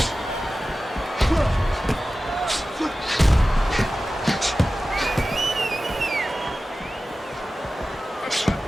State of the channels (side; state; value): both; normal; correlation 0.95